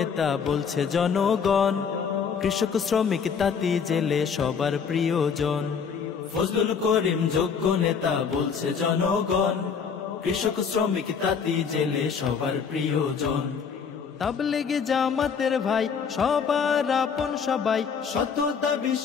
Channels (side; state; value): right; quieter; 6.3 dB